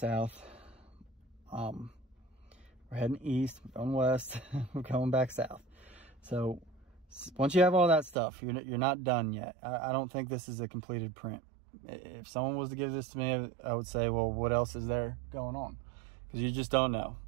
We're heading east, we're going west, we're going back south. So once you have all that stuff, you're not done yet. I don't think this is a completed print. If someone was to give this to me, I would say, well, what else is there going on? Because you just don't know.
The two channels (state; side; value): drops out; left; at 8.2 s